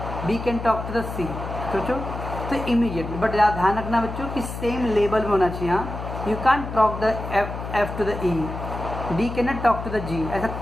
B can talk to the C. सोचो. तो इमीडिएटली, बट ध्यान रखना बच्चों कि सेम लेवल में होना चाहिए. हाँ, you can talk the F to the E, D can not talk to the G. ऐसा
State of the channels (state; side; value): noise; left; hum, 7 dB below the sound